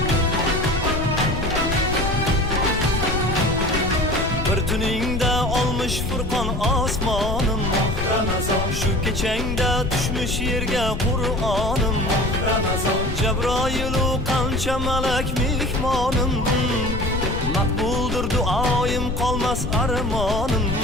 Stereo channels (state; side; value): noise; left; rumble, 4 dB below the sound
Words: Bir tuningda olmuş Furqon osmonim Ramazon. Shu kechangda tushmish yerga Qur'onim Ramazon. Jabroilu qancha malak mehmonim, maqbuldir duoyim, qolmas armonim.